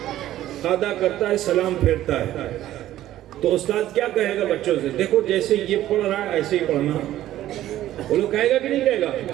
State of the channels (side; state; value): left; quieter; 13.5 dB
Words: قعدہ کرتا ہے، سلام پھیرتا ہے۔ تو استاد کیا کہے گا بچوں سے؟ دیکھو جیسے یہ پڑھ رہا ہے ایسے ہی پڑھنا۔ وہ لوگ کہے گا کہ نہیں کہے گا؟